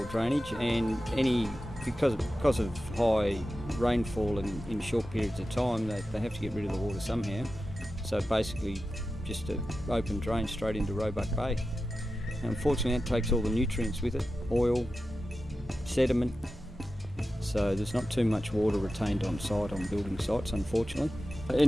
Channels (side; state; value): both; normal; correlation 0.93